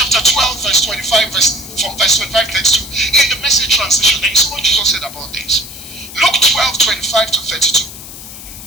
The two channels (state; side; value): noise; left; hiss, 14 dB below the sound